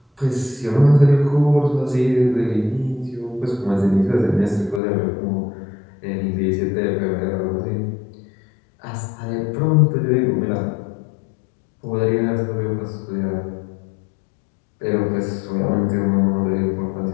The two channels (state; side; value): drops out; right; at 4.8 s